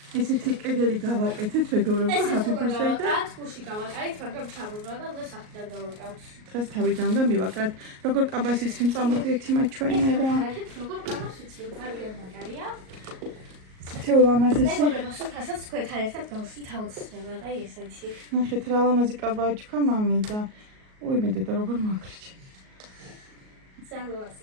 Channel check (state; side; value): late; left; 38 ms